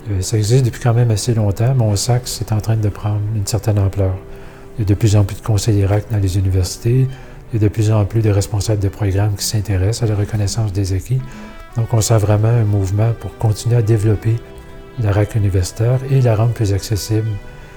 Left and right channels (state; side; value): identical; both; correlation 1.00